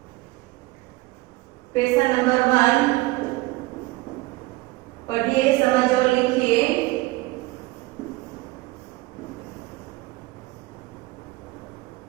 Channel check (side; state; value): left; quieter; 20.7 dB